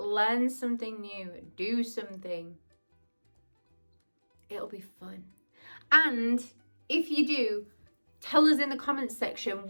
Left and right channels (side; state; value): both; inverted; correlation -1.00